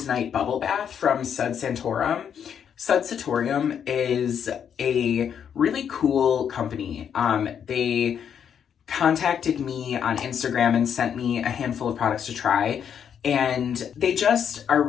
Night Bubble Bath from Sud Santorum. Sud Santorum is a really cool company. They contacted me on Instagram and sent me a handful of products to try, and they just are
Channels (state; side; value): quieter; right; 8.2 dB